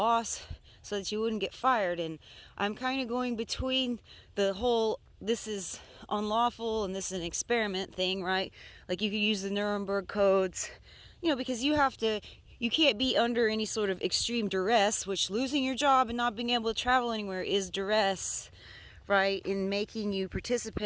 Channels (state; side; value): identical; both; correlation 1.00